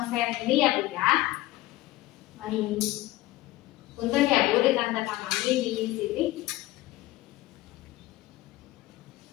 ini ya Bu ya. Baik. Punten ya Bu, ditandatangani di sini.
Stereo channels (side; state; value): right; quieter; 17.2 dB